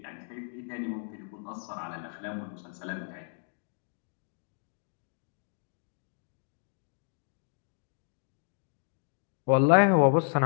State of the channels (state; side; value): silent; right; 56 dB below the other